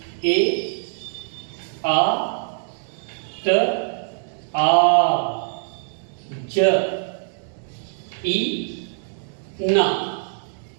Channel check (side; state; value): left; silent; digital silence